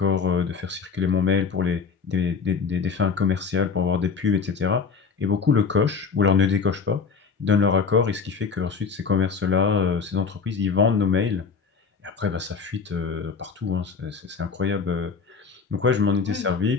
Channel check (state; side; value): quieter; right; 5.3 dB